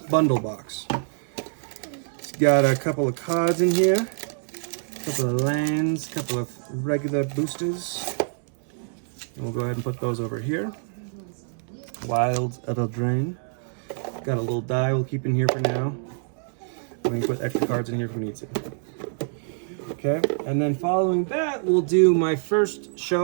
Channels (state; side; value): silent; left; 61 dB below the other